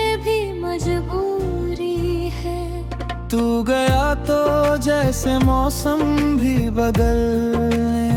भी मजबूरी है। तू गया तो जैसे मौसम भी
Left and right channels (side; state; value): both; identical; correlation 1.00